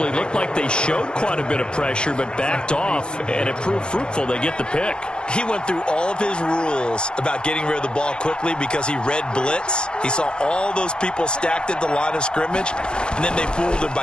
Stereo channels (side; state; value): right; late; 0.049 ms